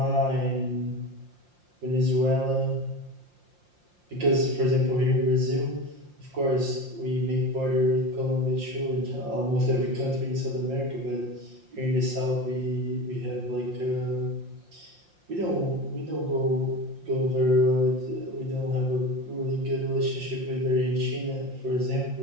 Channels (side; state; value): left; late; 5.7 ms